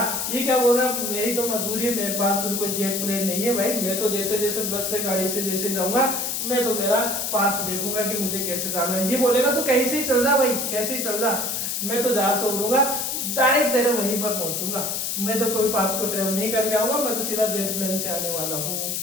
ये क्या बोल रहा, मेरी तो मजबूरी है, मेरे पास तो कोई जेट प्लेन नहीं है भाई। मैं तो जैसे जैसे बस से गाड़ी से जैसे जाऊंगा, मैं तो मेरा पाथ देखूंगा कि मुझे कैसे जाना है। ये बोलेगा तो कहीं से ही चल जा भाई, कैसे ही चल जा, मैं तो जहां से उड़ूंगा डायरेक्ट तेरे वहीं पर पहुंचूंगा। मैं तो कोई पाथ को ट्रेवल नहीं करके आऊंगा, मैं तो सीधा जेट प्लेन से आने वाला हूँ।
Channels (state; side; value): noise; left; hiss, 1 dB below the sound